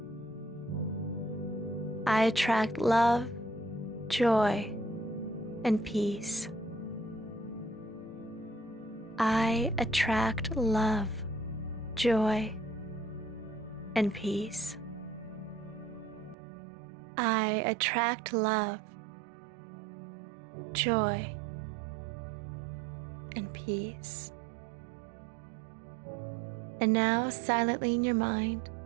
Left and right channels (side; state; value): left; drops out; at 16.4 s